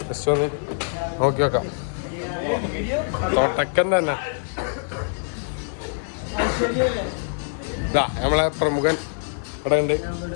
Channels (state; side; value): silent; right; digital silence